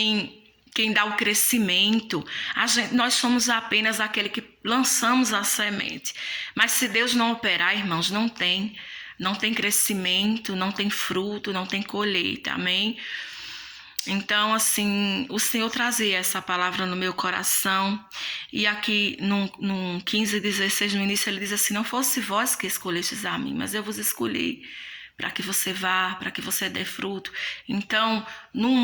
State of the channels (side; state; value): both; identical; correlation 1.00